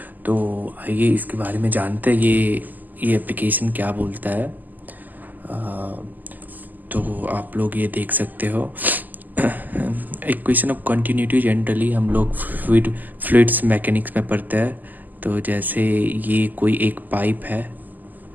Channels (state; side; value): late; left; 0.084 ms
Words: तो आइए इसके बारे में जानते हैं ये एप्लीकेशन क्या बोलता है। तो आप लोग ये देख सकते हो। इक्वेशन ऑफ कंटिन्यूटी जनरली हम लोग फ्लूइड्स मैकेनिक्स में पढ़ते हैं। तो जैसे ये कोई एक पाइप है,